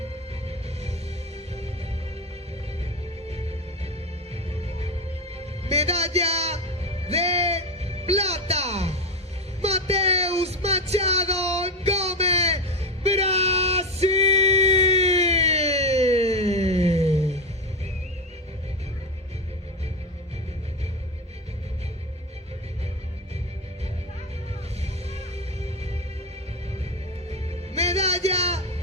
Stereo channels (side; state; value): both; normal; correlation 0.15